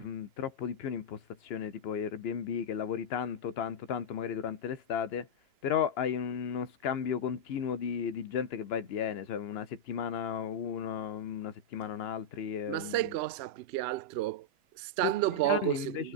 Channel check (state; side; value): late; right; 2.9 ms